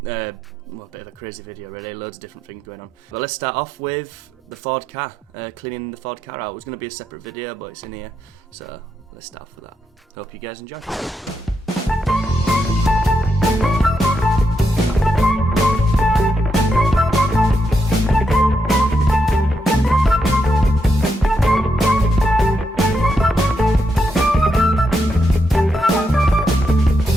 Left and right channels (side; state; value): both; normal; correlation 0.82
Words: crazy video really, loads of different things going on. But let's start off with the Ford car, cleaning the Ford car out. It was going to be a separate video, but it's in here, so let's start off with that. Hope you guys enjoy.